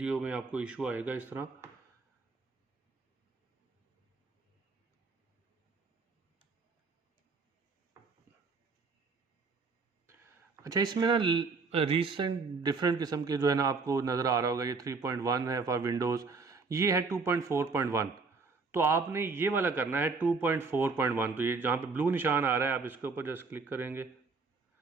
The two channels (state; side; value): quieter; left; 4.3 dB